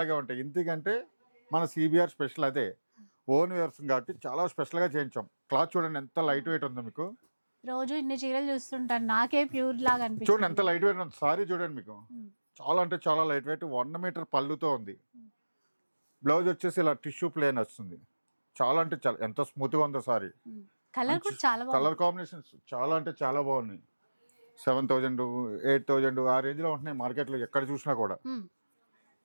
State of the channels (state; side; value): inverted; both; correlation -1.00